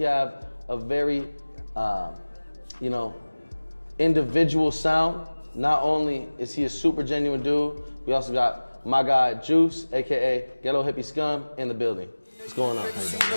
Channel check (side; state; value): both; inverted; correlation -1.00